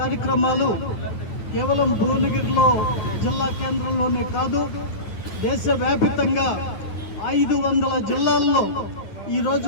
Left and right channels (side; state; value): right; late; 9.2 ms